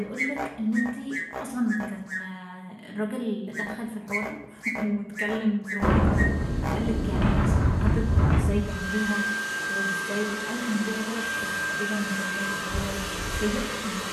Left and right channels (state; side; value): identical; both; correlation 1.00